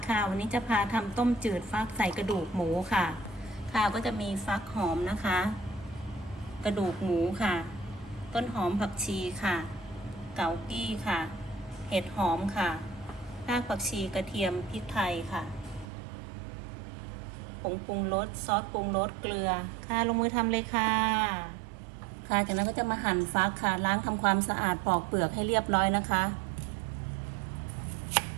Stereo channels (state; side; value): drops out; left; at 15.9 s